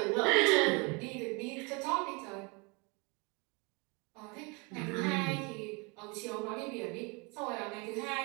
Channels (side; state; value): left; quieter; 30.1 dB